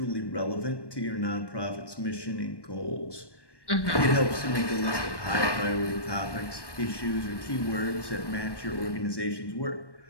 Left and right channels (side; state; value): right; late; 1.1 ms